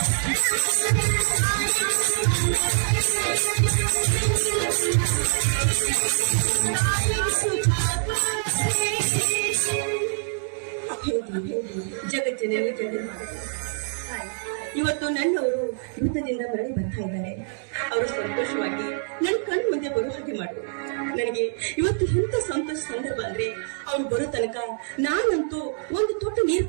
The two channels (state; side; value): silent; left; 62 dB below the other